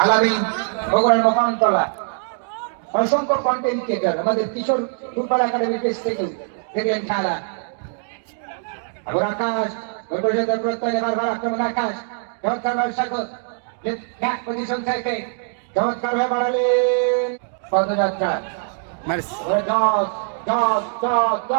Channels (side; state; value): left; silent; digital silence